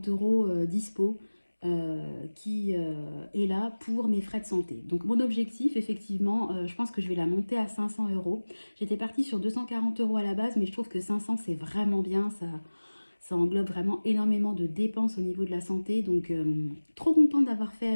€ dispo qui est là pour mes frais de santé. Donc mon objectif, effectivement, je pense que je vais la monter à 500 €. J'étais partie sur 240 € à la base, mais je trouve que 500 c'est vraiment bien. Ça englobe vraiment énormément de dépenses au niveau de la santé. Donc trop contente d'avoir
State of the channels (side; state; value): both; inverted; correlation -1.00